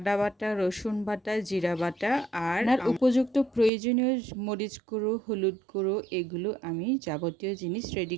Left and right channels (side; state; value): left; drops out; at 3.7 s